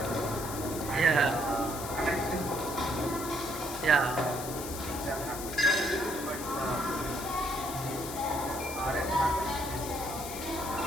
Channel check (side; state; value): left; noise; hiss, 9 dB below the sound